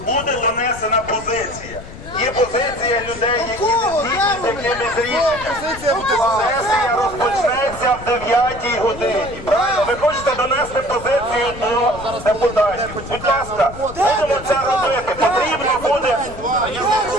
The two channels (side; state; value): left; noise; rumble, 14 dB below the sound